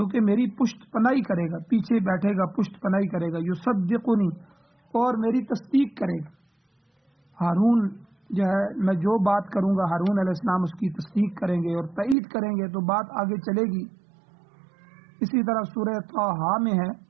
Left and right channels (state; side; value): drops out; left; at 12.2 s